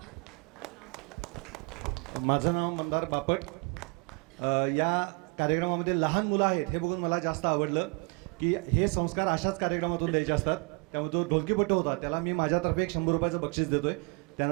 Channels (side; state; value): left; quieter; 33.0 dB